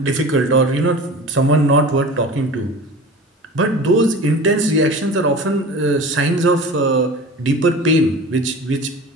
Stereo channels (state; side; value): normal; both; correlation 0.36